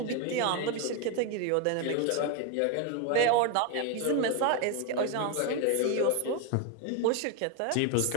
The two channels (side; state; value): both; different; correlation 0.02